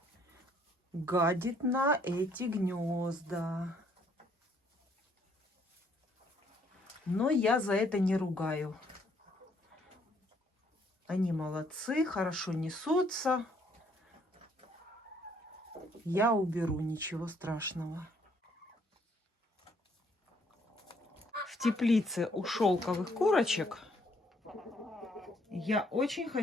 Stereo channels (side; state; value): both; normal; correlation 0.66